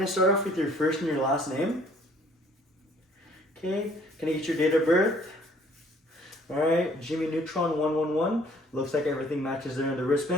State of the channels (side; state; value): both; normal; correlation 0.58